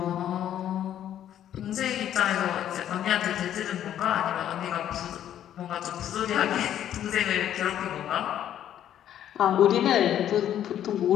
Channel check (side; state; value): right; quieter; 10.8 dB